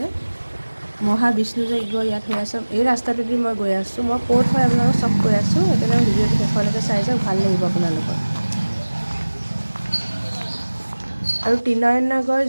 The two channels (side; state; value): both; inverted; correlation -1.00